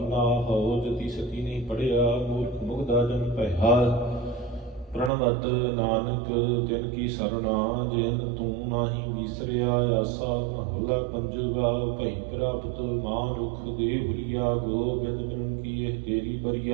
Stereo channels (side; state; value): left; drops out; at 5.1 s